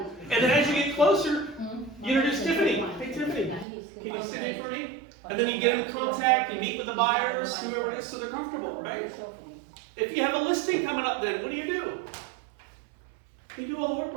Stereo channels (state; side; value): drops out; left; at 3.7 s